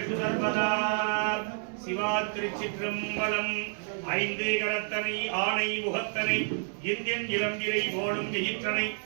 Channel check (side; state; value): left; silent; 58 dB below the other